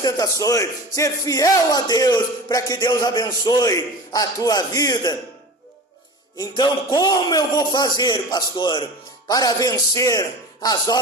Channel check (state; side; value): normal; both; correlation 0.35